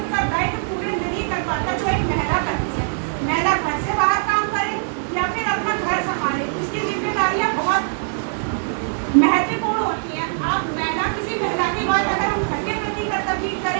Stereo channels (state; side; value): silent; left; digital silence